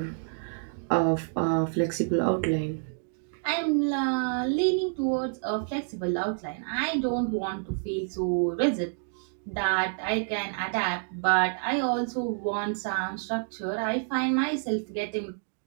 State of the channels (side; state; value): left; silent; 59 dB below the other